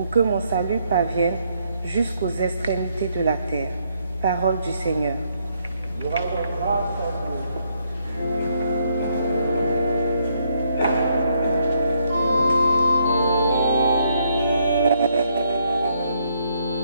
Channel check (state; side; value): inverted; both; correlation -0.73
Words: que mon salut parvienne jusqu'aux extrémités de la terre. Parole du Seigneur. Nous rendons grâce à Dieu.